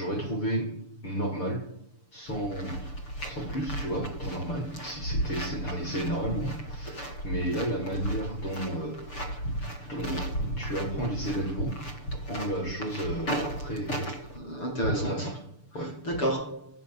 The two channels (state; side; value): late; right; 6.8 ms